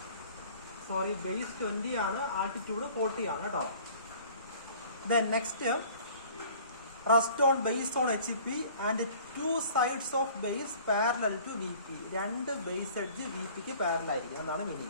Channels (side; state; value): both; inverted; correlation -0.50